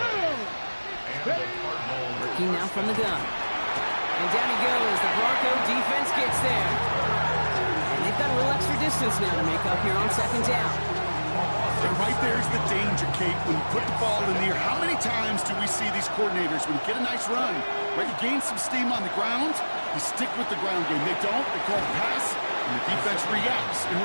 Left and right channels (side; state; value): both; inverted; correlation -1.00